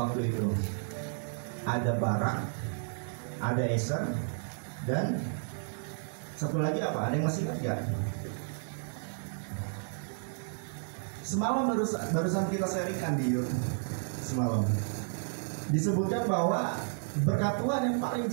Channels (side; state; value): left; silent; 56 dB below the other